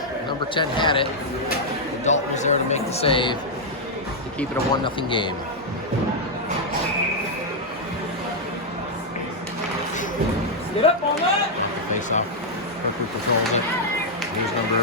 Number 10 had it. And Dalton was there to make the save to keep it a 1-0 game. Get up on that! Face-off. Kirkwood controls it. Here's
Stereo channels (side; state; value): both; normal; correlation -0.03